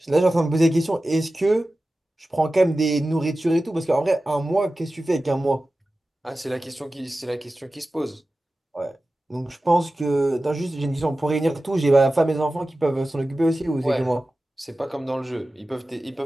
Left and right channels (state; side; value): normal; both; correlation 0.95